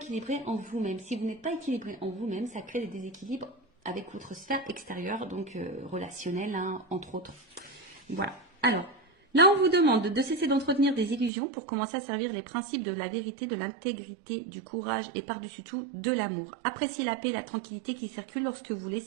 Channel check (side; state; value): left; drops out; at 11.3 s